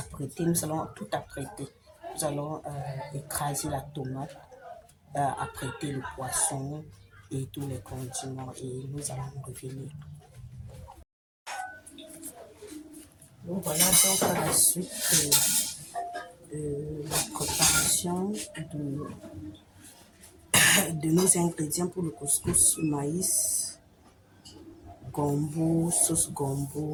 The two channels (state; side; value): identical; both; correlation 1.00